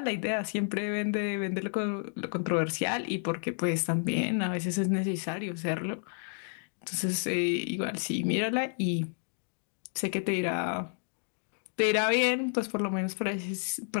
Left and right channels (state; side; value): silent; right; 57 dB below the other